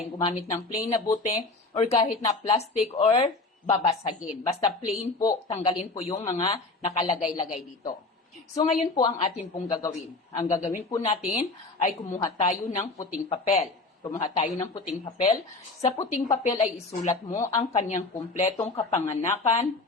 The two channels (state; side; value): quieter; right; 3.4 dB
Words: gumamit ng plain na bote or kahit na plastic or babasagin. Basta plain po, tanggalin po yung mga nakalagay-lagay dito. So, ngayon po ang atin pong gagawin. Ang gagawin po natin ay kumuha tayo ng puting papel. Kumuha tayo ng puting papel. Sa puting papel ay isulat mo ang kanyang kumpletong kapanganakan,